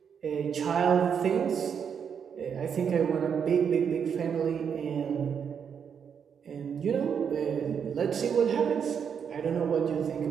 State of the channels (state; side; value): quieter; left; 7.3 dB